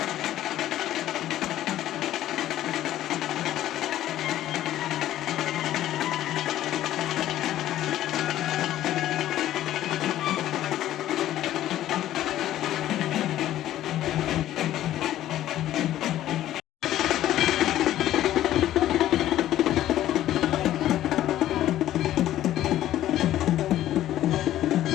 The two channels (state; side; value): quieter; right; 13.1 dB